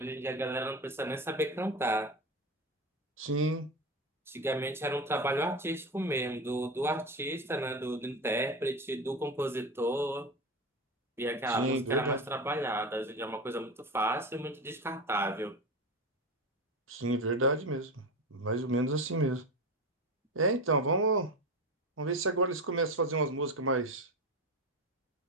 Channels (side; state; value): both; normal; correlation 0.22